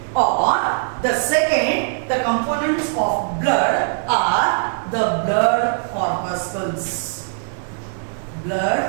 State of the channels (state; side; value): silent; left; 64 dB below the other